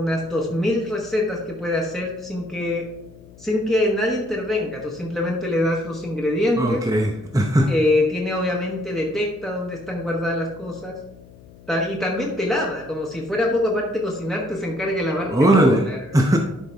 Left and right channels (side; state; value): left; noise; hum, 22 dB below the sound